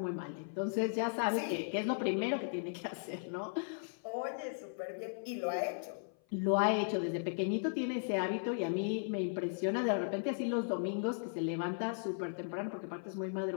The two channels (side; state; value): right; silent; 53 dB below the other